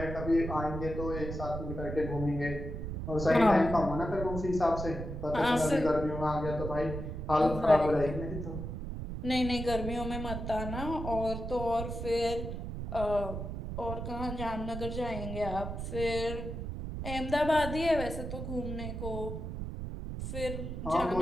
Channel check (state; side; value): noise; right; rumble, 6 dB below the sound